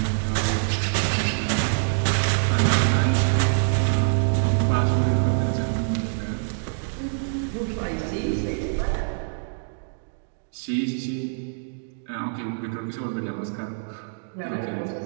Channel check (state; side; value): silent; left; digital silence